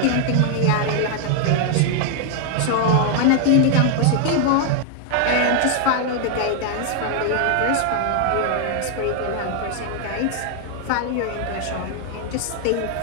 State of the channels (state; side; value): different; both; correlation 0.00